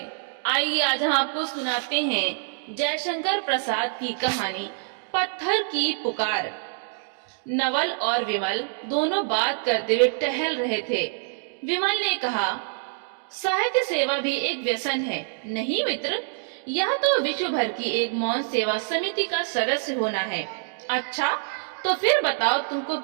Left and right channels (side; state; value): left; silent; digital silence